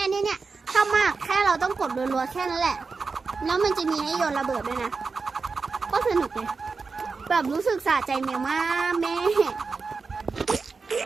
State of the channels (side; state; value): left; quieter; 4.6 dB